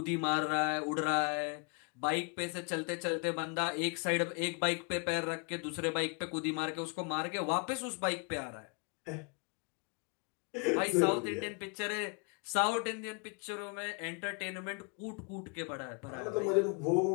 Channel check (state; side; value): quieter; right; 33.6 dB